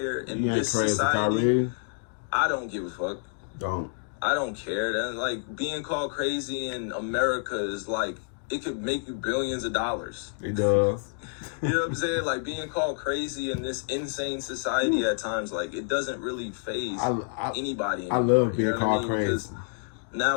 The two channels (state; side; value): silent; right; digital silence